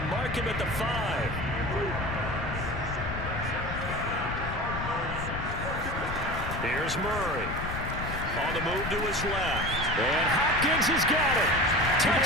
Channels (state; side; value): noise; left; rumble, 6 dB below the sound